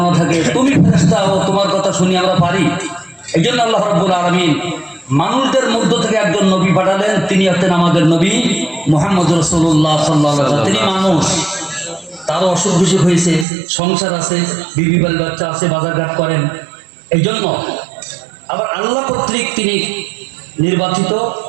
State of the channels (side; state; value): left; drops out; at 13.5 s